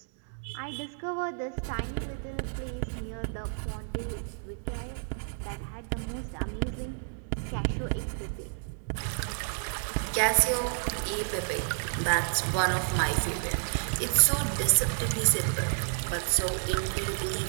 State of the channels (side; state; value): left; silent; digital silence